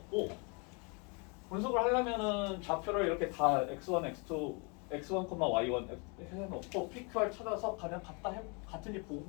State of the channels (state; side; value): quieter; right; 33.1 dB